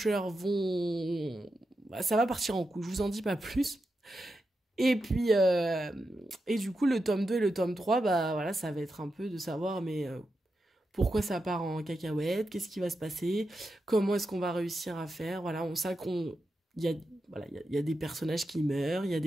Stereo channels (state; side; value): normal; both; correlation 0.88